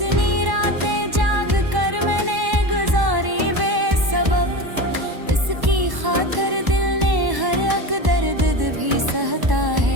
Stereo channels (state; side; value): late; left; 1.1 ms